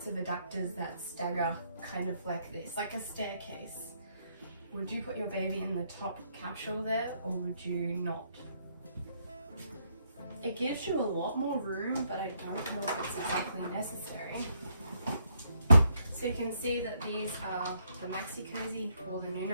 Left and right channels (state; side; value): inverted; both; correlation -0.73